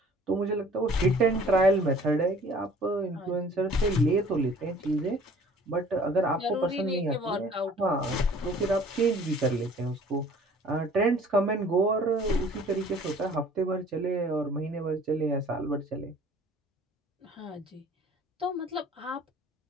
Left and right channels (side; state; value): both; normal; correlation 0.52